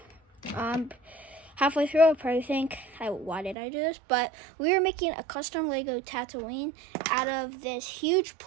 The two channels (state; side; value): drops out; left; at 3.6 s